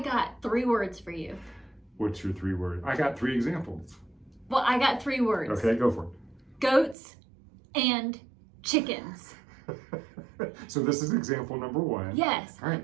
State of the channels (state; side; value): drops out; left; at 7.0 s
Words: 3 words for you. What's your 3 words? I got 3 examples. Well, I got 3 words. Okay, go for it. Goats and chickens. So this is example number 1. Yes. All right,